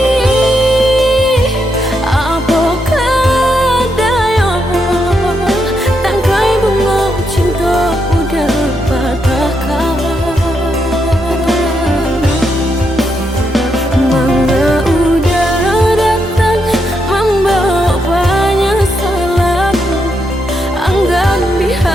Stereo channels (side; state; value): both; normal; correlation 0.81